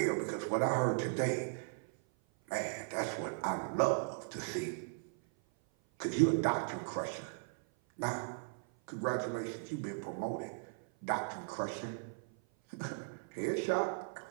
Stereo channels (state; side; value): silent; left; 53 dB below the other